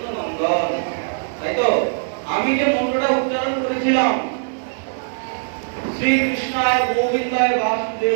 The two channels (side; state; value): left; silent; digital silence